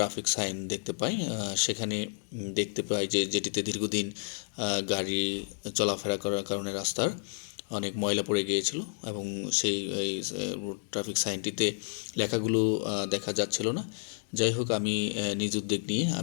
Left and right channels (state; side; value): silent; right; 57 dB below the other